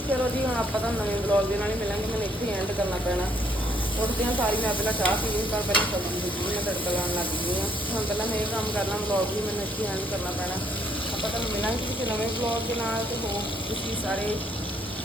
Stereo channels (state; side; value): normal; both; correlation 0.68